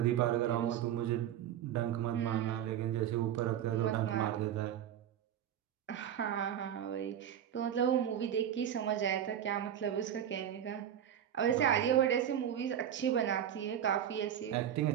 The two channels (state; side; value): quieter; left; 10.0 dB